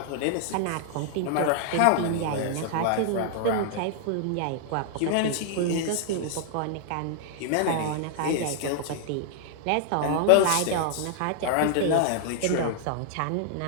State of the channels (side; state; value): both; different; correlation -0.01